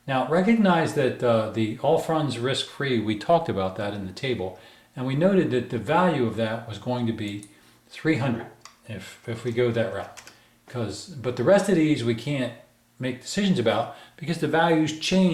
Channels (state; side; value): identical; both; correlation 1.00